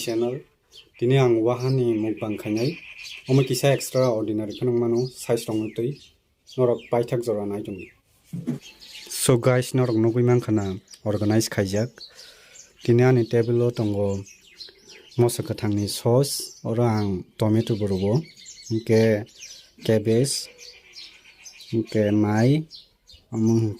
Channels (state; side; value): identical; both; correlation 1.00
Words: Dini ang wahan ni mukbang khainai. Omo kisa extraordinary khanang mano size rong tui. Norok paithak jora nai tumi. So guys, norok nugui man khana organize khaijak. Dini ani table o tongo mosa kathangni sauce ora ang tomato burugo. Ke cabbage. Ke mai.